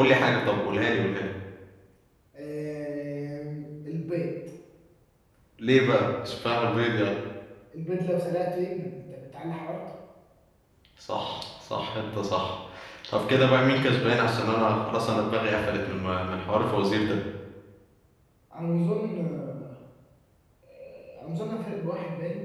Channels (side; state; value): both; identical; correlation 1.00